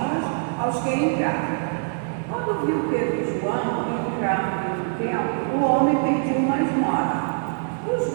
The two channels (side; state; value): left; silent; 63 dB below the other